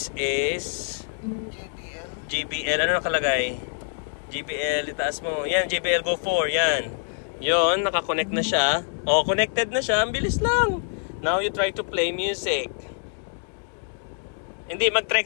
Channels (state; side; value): silent; right; digital silence